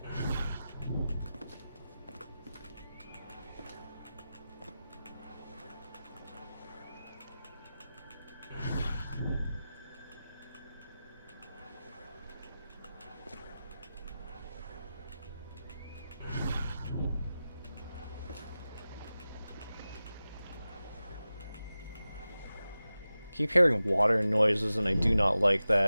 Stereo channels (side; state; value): both; inverted; correlation -0.94